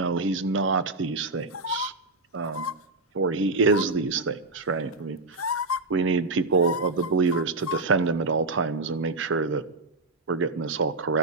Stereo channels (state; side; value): quieter; left; 3.3 dB